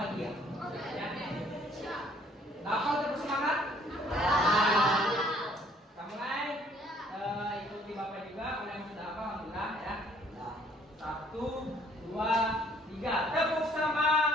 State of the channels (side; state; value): both; normal; correlation 0.60